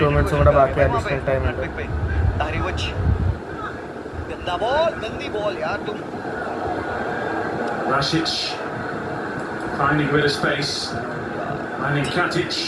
2 മിനിറ്റ്സും കൂടെ ബാക്കി അഡീഷണൽ ടൈം ഉണ്ട്. Rasic finding a bit of space, finding Katic.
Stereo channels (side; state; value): both; identical; correlation 1.00